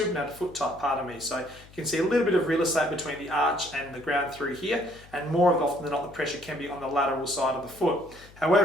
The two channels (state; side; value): noise; left; hum, 23 dB below the sound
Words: foot type, pardon me. So you can see a little bit of real estate between the arch and the ground through here, and more often than not the pressure can be on the lateral side of the foot.